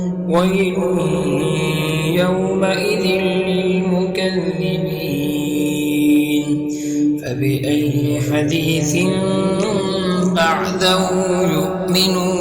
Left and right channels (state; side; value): identical; both; correlation 1.00